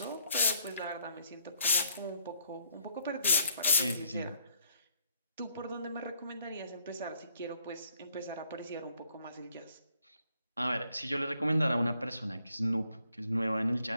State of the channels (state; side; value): inverted; both; correlation -0.68